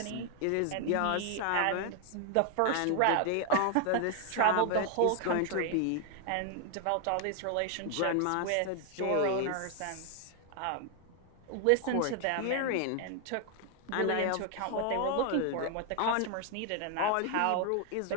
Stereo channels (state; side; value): different; both; correlation 0.00